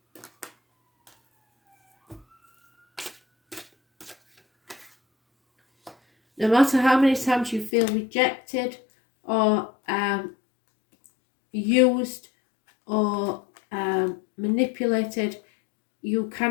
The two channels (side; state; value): right; drops out; at 7.7 s